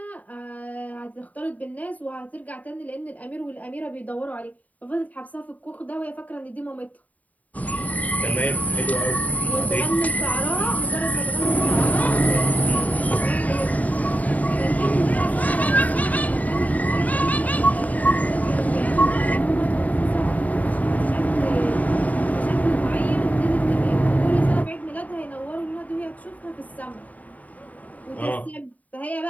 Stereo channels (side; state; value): right; late; 0.073 ms